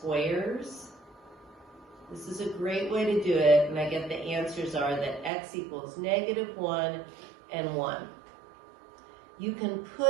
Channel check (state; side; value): drops out; left; at 5.3 s